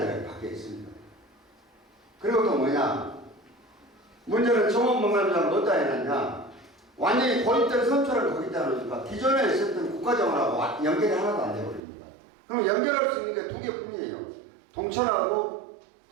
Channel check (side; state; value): left; drops out; at 11.8 s